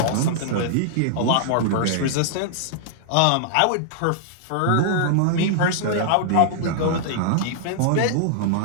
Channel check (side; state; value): both; different; correlation -0.01